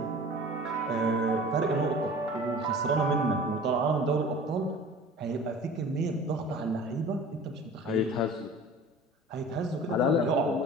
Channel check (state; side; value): normal; both; correlation 0.42